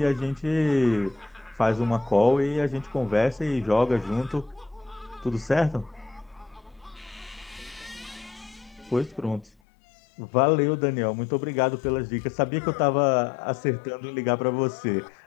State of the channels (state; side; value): drops out; right; at 9.5 s